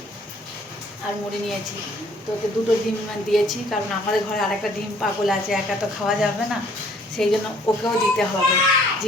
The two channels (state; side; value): normal; both; correlation 0.59